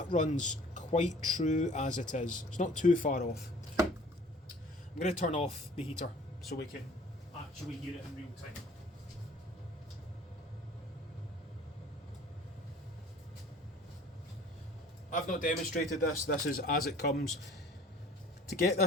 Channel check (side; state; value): both; normal; correlation 0.50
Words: runs quite true as it is. It's not too far off. I'm going to turn off the heater so we can actually hear it in real time. I've not demonstrated this, this is as it comes. To get